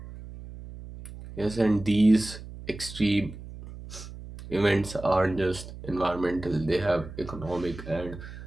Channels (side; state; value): right; noise; hum, 13 dB below the sound